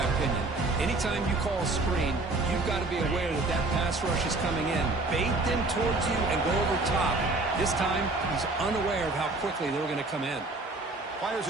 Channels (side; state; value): left; quieter; 3.2 dB